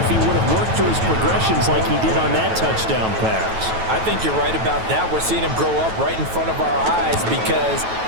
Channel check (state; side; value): late; left; 9.2 ms